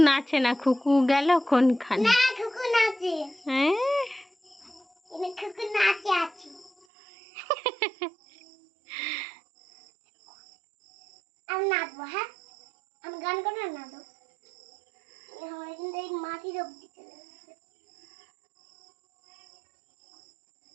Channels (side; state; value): left; drops out; at 6.7 s